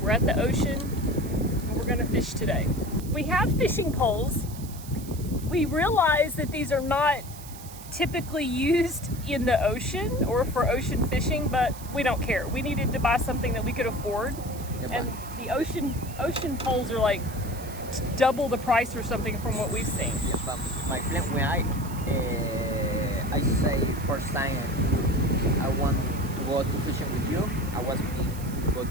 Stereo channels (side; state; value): right; noise; hiss, 16 dB below the sound